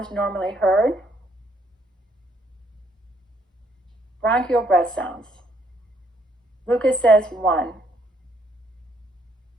normally heard? Bronchial breath sounds. Lucas says 1.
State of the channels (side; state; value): both; normal; correlation 0.69